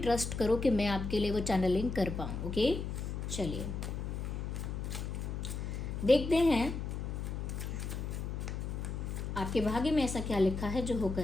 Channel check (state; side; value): noise; left; hum, 4 dB below the sound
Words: करो कि मैं आपके लिए वो चैनलिंग कर पाऊँ। ओके, चलिए देखते हैं आपके भाग्य में ऐसा क्या लिखा है जो